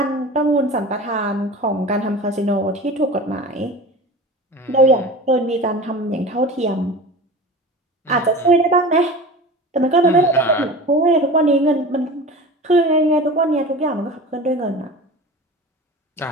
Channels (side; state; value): both; normal; correlation 0.34